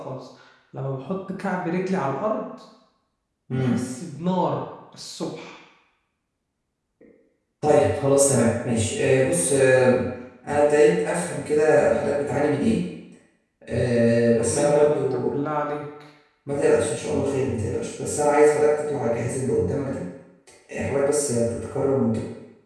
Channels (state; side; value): identical; both; correlation 1.00